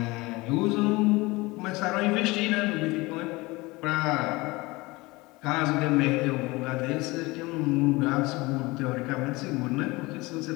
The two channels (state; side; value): quieter; right; 22.5 dB